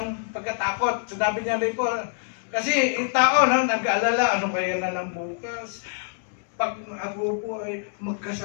pagkatakot. Sinabi niya rin po, kasi yung tao nag-aalala, ano kaya na lang bukas? Pag ako po ay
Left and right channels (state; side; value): silent; right; digital silence